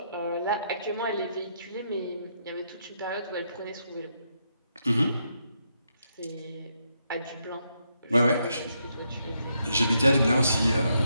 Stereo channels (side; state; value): both; inverted; correlation -0.79